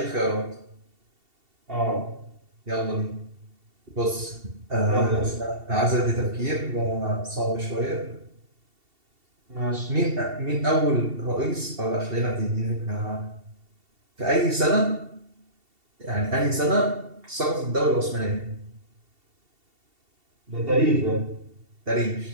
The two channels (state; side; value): late; left; 2.7 ms